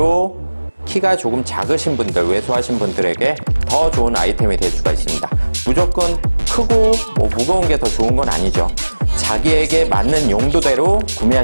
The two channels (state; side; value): inverted; both; correlation -1.00